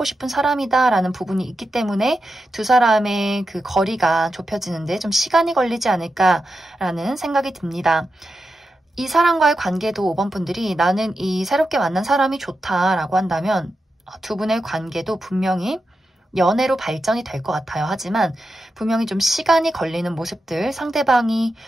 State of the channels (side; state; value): both; normal; correlation 0.89